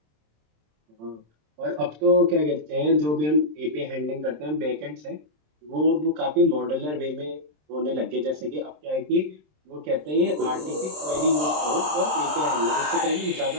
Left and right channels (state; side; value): late; left; 26 ms